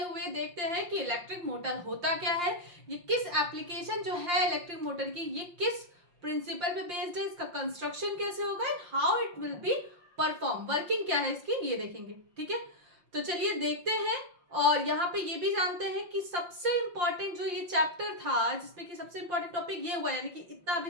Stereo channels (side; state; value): left; late; 5.7 ms